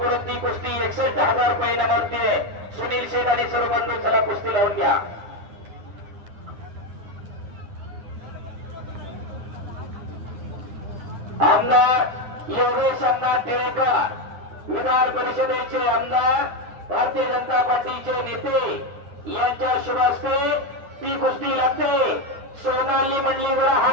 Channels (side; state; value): left; late; 9.8 ms